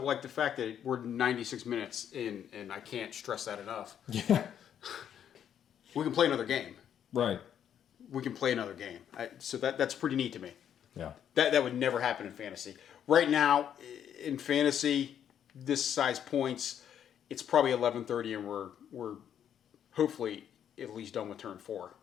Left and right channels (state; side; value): quieter; right; 9.3 dB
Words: like the fact that we're 96 minutes in, and I can't stress that enough. Yeah. We can play another game. Right. We can play another game. So that's pretty neat to me. Yeah. That would never happen in fantasy. Right now, in fantasy, this size points, it's probably 11:30, and we're hopefully at least done with turn 4.